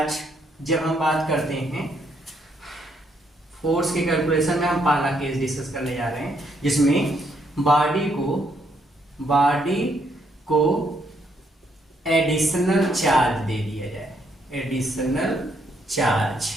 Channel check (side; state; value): both; normal; correlation 0.73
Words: जब हम बात करते हैं फोर्स के कैलकुलेशन में, हम पहला केस डिस्कस करने जा रहे हैं जिसमें बॉडी को एडिशनल चार्ज दे दिया जाए।